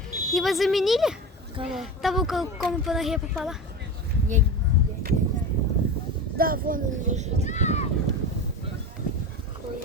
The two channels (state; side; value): normal; both; correlation 0.26